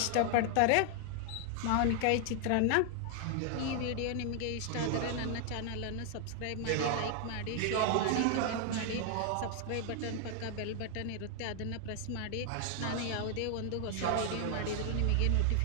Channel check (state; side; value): different; both; correlation 0.00